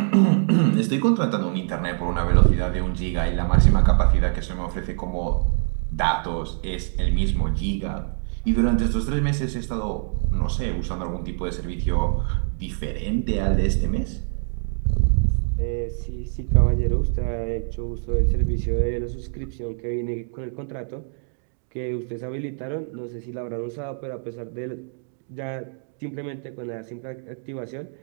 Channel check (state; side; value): silent; left; digital silence